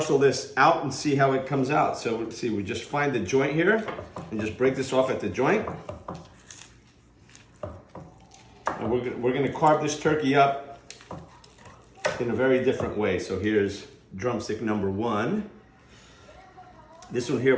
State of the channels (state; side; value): identical; both; correlation 1.00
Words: this out and see how it comes out. So let's see, we just find the joint here and just break this off at the joint. And we're gonna carve this turkey up in a very different way. So here's drumstick number 1. This one